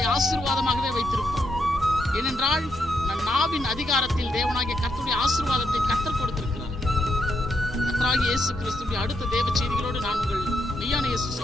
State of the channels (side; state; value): both; normal; correlation 0.79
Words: ஆசீர்வாதமாகவே வைத்திருப்பார். ஏனென்றால் நம் நாவின் அதிகாரத்தில் தேவனாகிய கர்த்தருடைய ஆசீர்வாதத்தை கர்த்தர் கொடுத்திருக்கிறார். கர்த்தராகிய இயேசு கிறிஸ்துவின் அடுத்த தேவ செய்திகளோடு நான் உங்கள் மெய்யான இயேசு